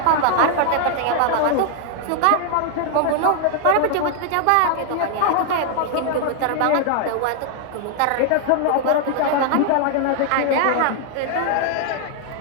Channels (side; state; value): both; different; correlation 0.00